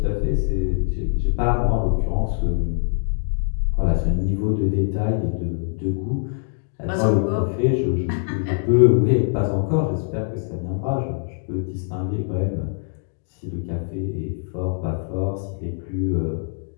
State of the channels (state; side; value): silent; right; digital silence